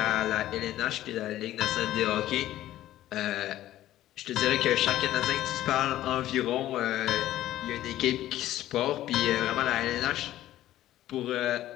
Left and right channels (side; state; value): right; quieter; 13.8 dB